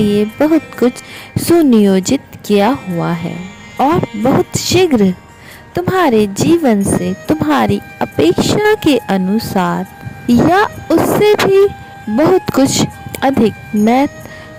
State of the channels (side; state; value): both; identical; correlation 1.00